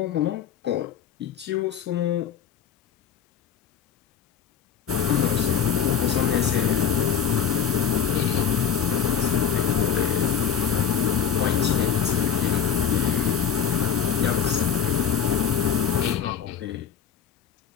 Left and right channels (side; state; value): right; quieter; 7.9 dB